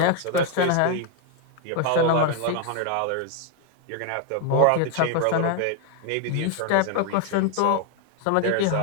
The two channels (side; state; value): both; different; correlation 0.01